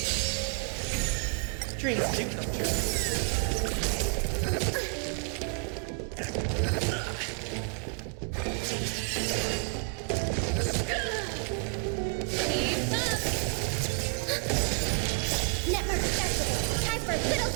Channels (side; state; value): left; quieter; 37.5 dB